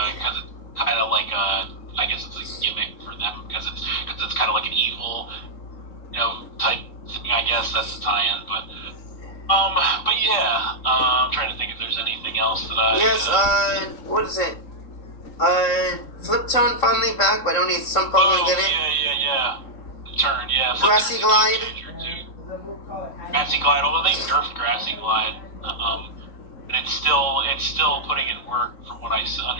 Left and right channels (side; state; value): right; late; 3.7 ms